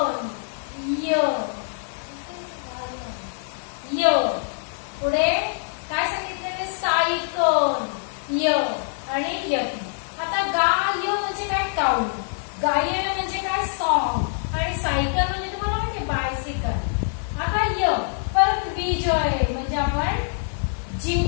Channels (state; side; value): silent; right; 62 dB below the other